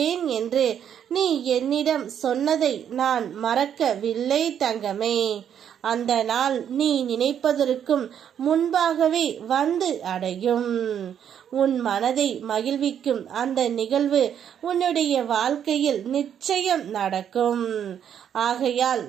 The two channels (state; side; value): quieter; left; 9.0 dB